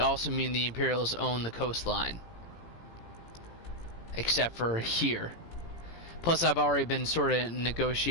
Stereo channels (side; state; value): right; late; 18 ms